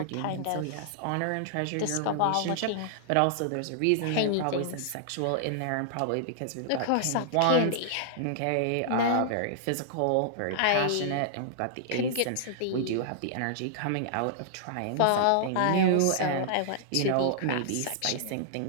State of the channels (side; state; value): both; different; correlation -0.01